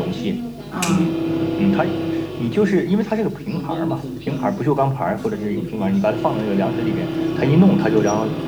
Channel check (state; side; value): identical; both; correlation 1.00